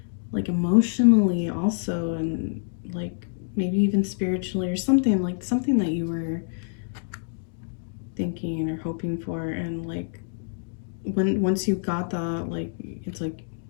like emotionally also, and like maybe even spiritually or something, like something that you were thinking or hoping for. And like once you got that, like it's like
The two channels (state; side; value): silent; right; digital silence